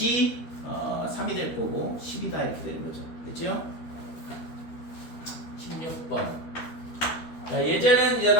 3이 될 거고 10이다 이렇게 되는 거죠. 됐죠? 16번.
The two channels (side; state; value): right; late; 13 ms